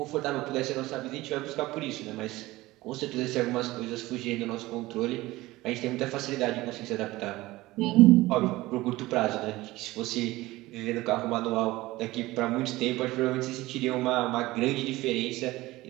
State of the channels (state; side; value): quieter; left; 18.7 dB